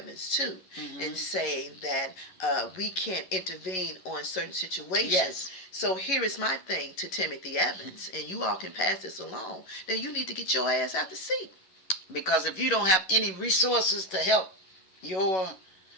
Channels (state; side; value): late; right; 11 ms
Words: too, mm-hmm. and saying that we can't intervene on certain situations. Yes. So here is my thing to Timothy Evans, and you all can pass this along. Then you need to get your ass out the seat. Because if you don't have any resources to help your